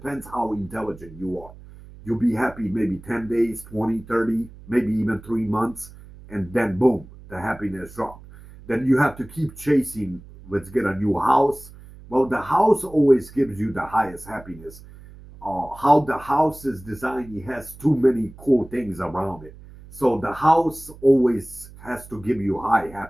how intelligent you are. You'll be happy maybe 10 days, 20, 30, maybe even 3 months, and then boom, the happiness dropped. Then you have to keep chasing. Let's get a new house. Well, the house always gives you the highest happiness. How the house is designed, it has too many cool things around it. So the house always has to give you high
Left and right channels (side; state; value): right; noise; hum, 19 dB below the sound